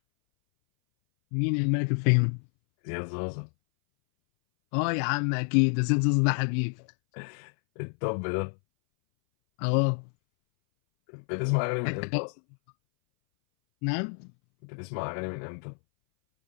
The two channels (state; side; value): silent; right; 59 dB below the other